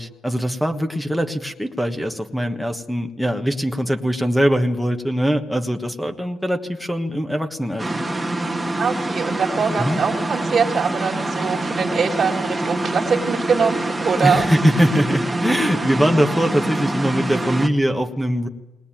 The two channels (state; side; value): normal; both; correlation 0.92